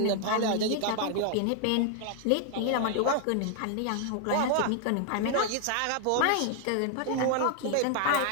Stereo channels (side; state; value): both; different; correlation 0.00